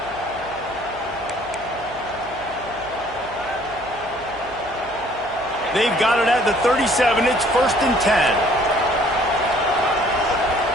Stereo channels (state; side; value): noise; right; hum, 20 dB below the sound